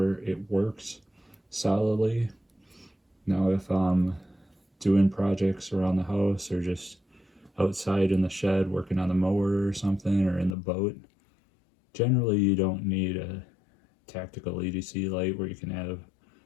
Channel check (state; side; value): drops out; right; at 10.6 s